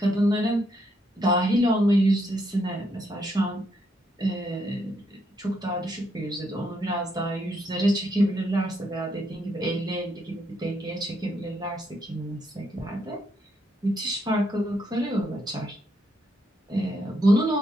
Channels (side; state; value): both; normal; correlation 0.76